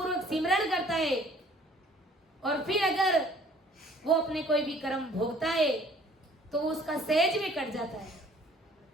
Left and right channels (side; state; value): both; normal; correlation 0.55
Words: सिमरन करता है, और फिर अगर वो अपने कोई भी कर्म भोगता है तो उसका सहज में कट जाता है।